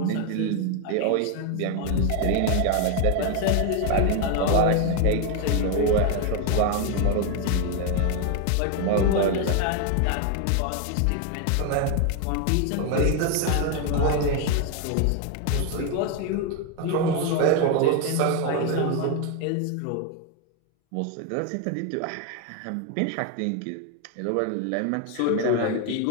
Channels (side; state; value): both; different; correlation 0.01